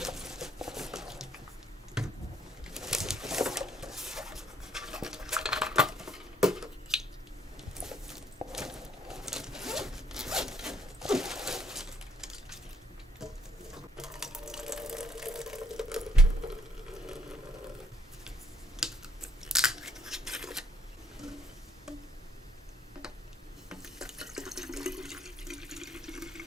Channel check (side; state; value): both; normal; correlation 0.68